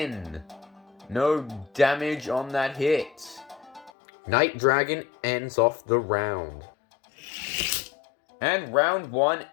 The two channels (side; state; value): right; drops out; at 3.9 s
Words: No damage on that hit. Night Dragon ends off the round. And round 1